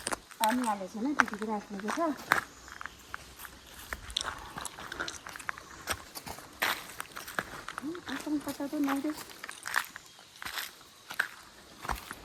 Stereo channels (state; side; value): identical; both; correlation 1.00